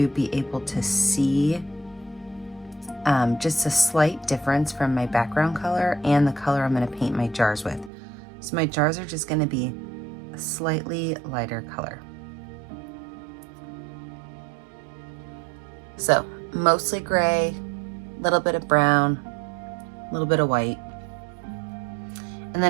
be able to see just a slight difference from my background color and the color I'm going to paint my jars with. So my jars are just going to be a slightly lighter color. So mostly gray, a little bit of brown, a little bit of white. And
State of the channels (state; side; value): drops out; left; at 7.9 s